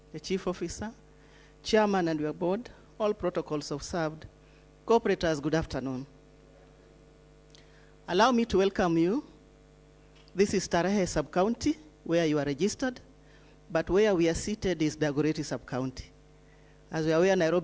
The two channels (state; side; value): identical; both; correlation 1.00